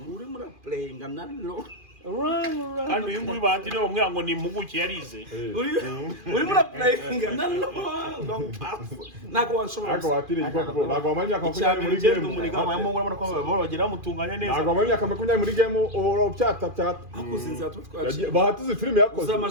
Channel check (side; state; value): left; late; 2.4 ms